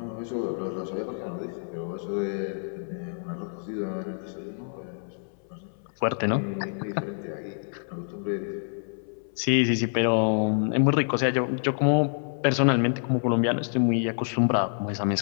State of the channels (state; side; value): silent; right; 58 dB below the other